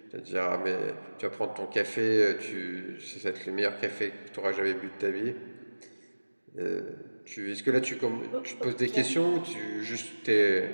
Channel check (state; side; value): inverted; both; correlation -1.00